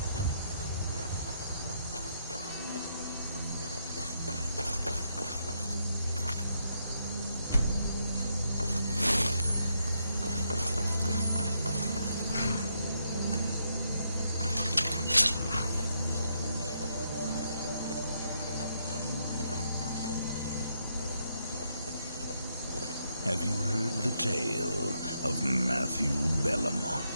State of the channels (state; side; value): inverted; both; correlation -0.77